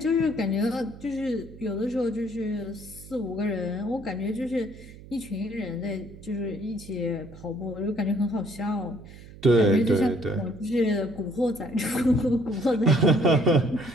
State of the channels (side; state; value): right; noise; hum, 18 dB below the sound